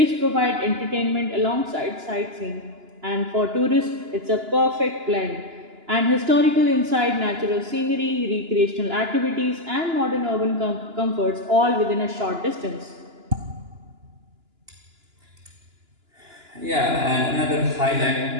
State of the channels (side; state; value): left; late; 2.9 ms